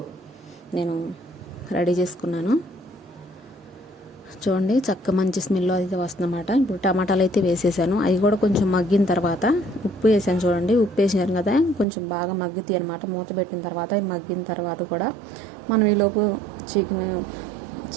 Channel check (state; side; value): drops out; left; at 11.9 s